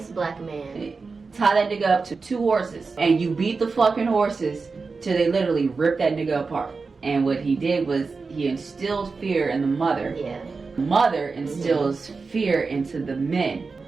black man. Tie that nigga up to 2 horses, and you beat the fucking horses till they literally rip that nigga apart. And what he did was he instilled fear in the mother. Yeah. Mother instills fear into the men.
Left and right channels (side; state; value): left; quieter; 4.4 dB